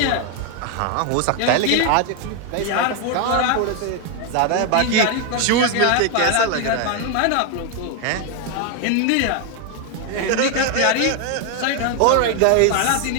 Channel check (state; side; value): different; both; correlation 0.01